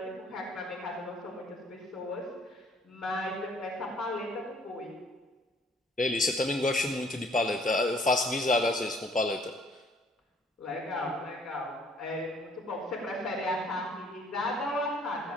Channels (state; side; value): normal; both; correlation 0.60